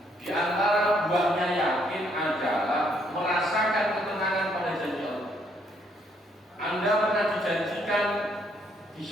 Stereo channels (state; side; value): normal; both; correlation 0.69